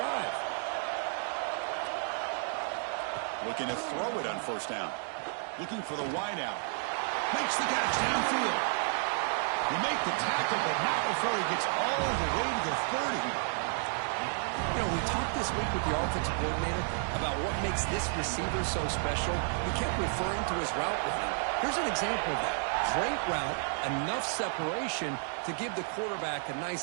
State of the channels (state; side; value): silent; left; 57 dB below the other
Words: Looking to throw it on 1st down. Looking for the wide out. Makes the catch downfield. He makes the tackle, but not before he gets all the way to the 30. You know, we talked this week with the offensive coordinator about what makes this receiver so special. He kept referring to his route running. Here's an example of that. Great route, enough separation to give the quarterback a